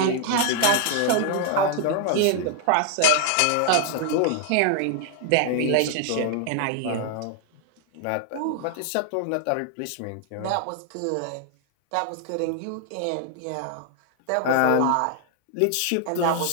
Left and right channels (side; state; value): both; different; correlation 0.00